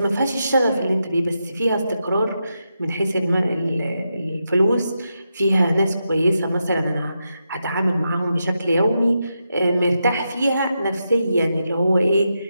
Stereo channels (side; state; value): both; inverted; correlation -0.86